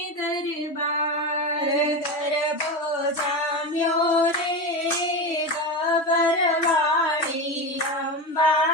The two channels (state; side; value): late; right; 3.1 ms